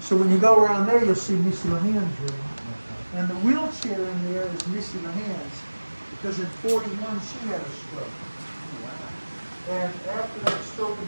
when you go around there, you'll see Missy LeHan's room. And the wheelchair in there is Missy LeHan's because in 41, she had a stroke. And after that stroke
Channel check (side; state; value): both; inverted; correlation -1.00